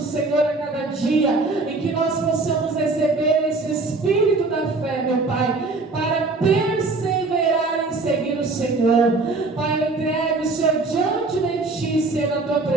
a cada dia, em que nós possamos receber esse espírito da fé, meu Pai, para perseverar em seguir o Senhor. Pai, eu entrego o Senhor diante de Ti, Senhor, na Tua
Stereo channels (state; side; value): quieter; left; 3.5 dB